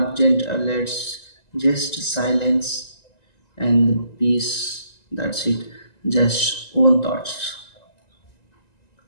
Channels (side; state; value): right; late; 1.9 ms